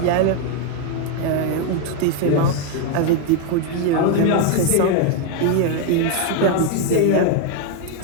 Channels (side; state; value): both; different; correlation 0.01